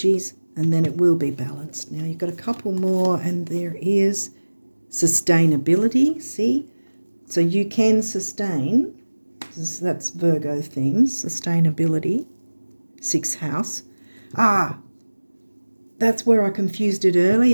and then it will be balanced. Now you've got a couple more and there is sustainability, see? So you can sustain, that's Virgo themes, sustainability, 6th house. That's where I confused it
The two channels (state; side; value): inverted; both; correlation -1.00